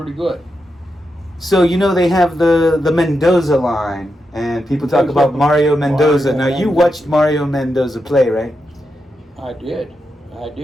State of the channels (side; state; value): both; normal; correlation 0.86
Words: good. So they have the Mendoza line, and people talk about Mario Mendoza. Now you watched Mario Mendoza play, right? I did.